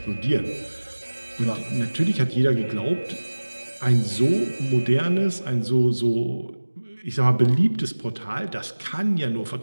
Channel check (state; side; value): inverted; both; correlation -1.00